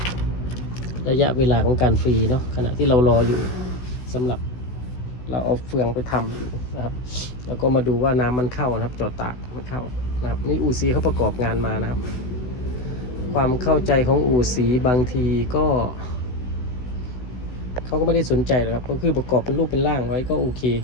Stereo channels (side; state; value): right; late; 16 ms